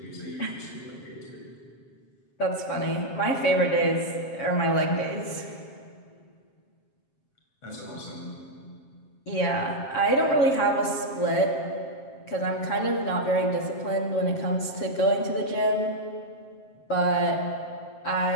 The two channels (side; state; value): right; late; 7.5 ms